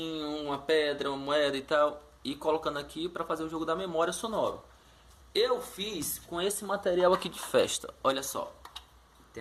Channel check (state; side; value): identical; both; correlation 1.00